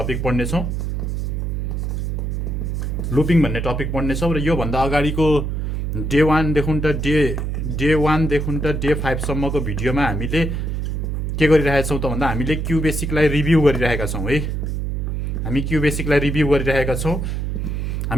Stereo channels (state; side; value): noise; right; hum, 2 dB below the sound